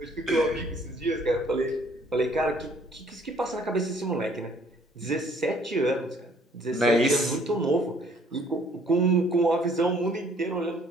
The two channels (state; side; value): normal; both; correlation 0.60